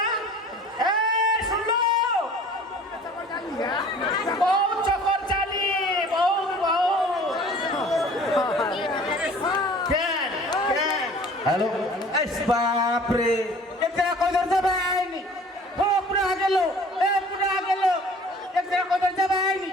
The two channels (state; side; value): normal; both; correlation 0.48